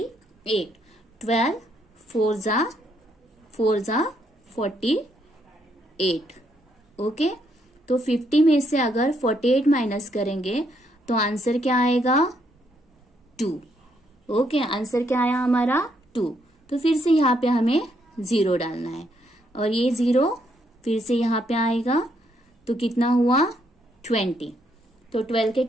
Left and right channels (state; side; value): normal; both; correlation 0.74